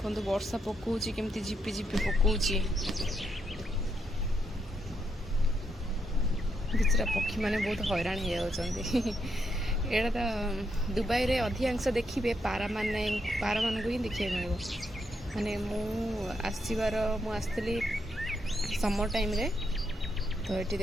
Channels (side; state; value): both; normal; correlation 0.79